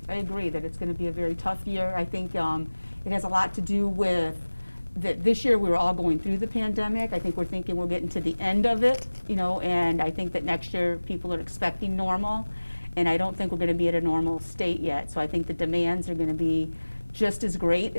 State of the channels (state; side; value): inverted; both; correlation -1.00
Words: I agree that it's going to be a very tough year. I think it has a lot to do with that this year we were all going through the pandemic. I think we're thinking we're getting to the end of it, you know, and I think that next year people are expecting normal, and I don't think we're going to be at a normal state yet. So I think the demands are going to be just as great